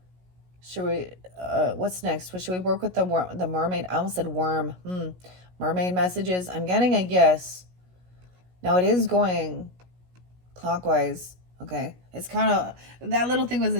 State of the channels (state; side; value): late; left; 16 ms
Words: Should we, what's next? Should we work with the mermaid? I almost said worm. Mermaid messages. I'm getting a yes. Now it is going clockwise. Okay. It's kind of, that little thing was